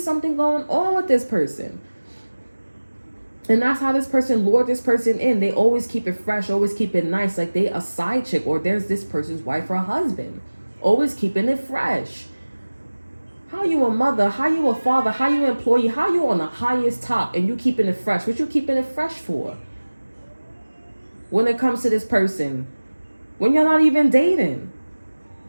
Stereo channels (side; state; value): both; inverted; correlation -1.00